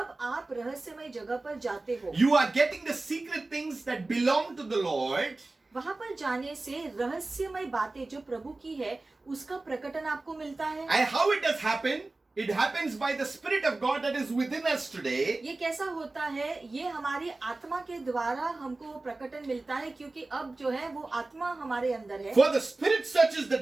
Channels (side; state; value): left; quieter; 3.2 dB